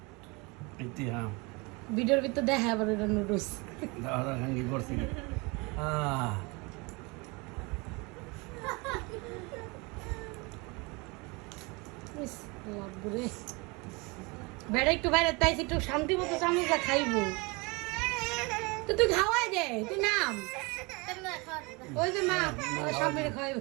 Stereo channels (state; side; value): quieter; left; 27.4 dB